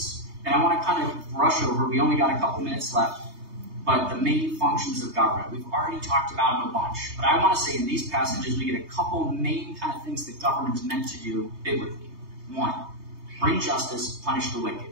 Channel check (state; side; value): late; left; 3.2 ms